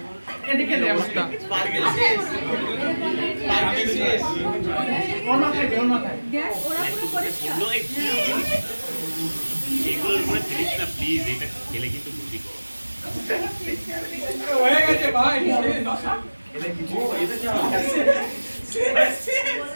এদিকে দে অবস্থা ওর মাথায় দেখ ওরা পুরো পরিষ্কার এগুলোর উপরে ফেলিস না প্লিজ, এটা খেলে কিন্তু বুদ্ধি কর। হয়ে গেছে ভাই দশা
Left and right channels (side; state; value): both; inverted; correlation -1.00